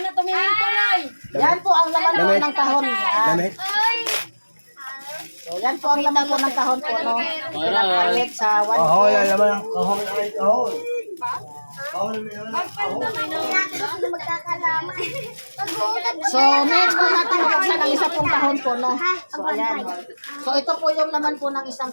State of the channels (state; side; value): inverted; both; correlation -1.00